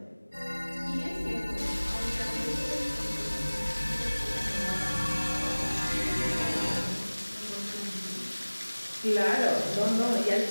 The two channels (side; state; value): both; inverted; correlation -1.00